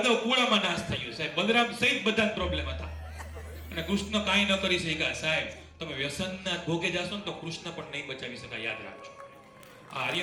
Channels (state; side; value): identical; both; correlation 1.00